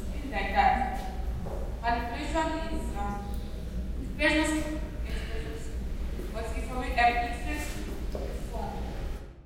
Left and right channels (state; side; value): identical; both; correlation 1.00